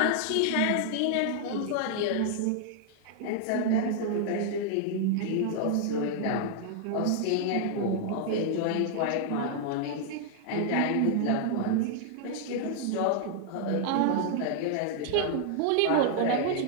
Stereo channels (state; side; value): different; both; correlation 0.00